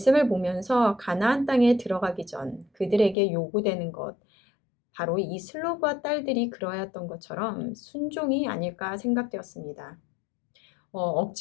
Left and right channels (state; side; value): drops out; right; at 3.2 s